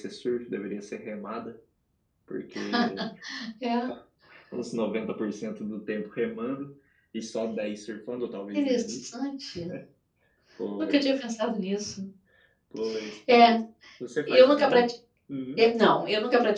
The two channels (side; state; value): both; identical; correlation 1.00